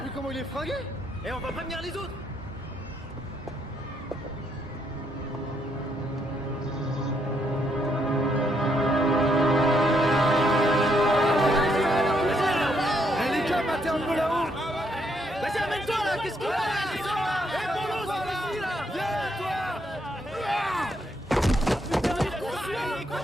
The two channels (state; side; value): normal; both; correlation 0.74